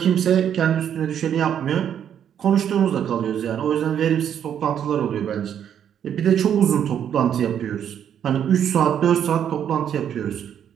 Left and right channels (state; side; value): quieter; left; 9.2 dB